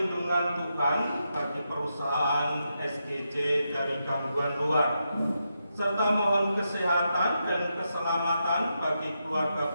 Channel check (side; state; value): both; inverted; correlation -0.85